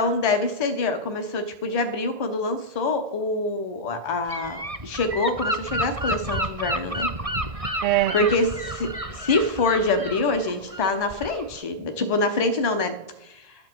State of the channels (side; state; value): left; late; 1.8 ms